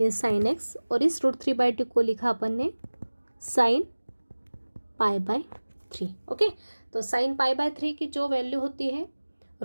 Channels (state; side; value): inverted; both; correlation -1.00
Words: साइन x, और इस √3/2 को लिखा अपन ने साइन π/3। ओके, तो साइन π/3 की जो वैल्यू होती है